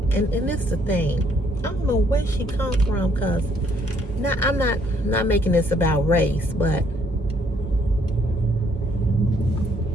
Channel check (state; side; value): normal; both; correlation 0.67